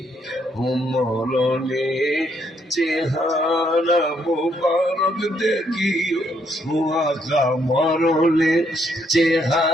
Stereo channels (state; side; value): normal; both; correlation 0.72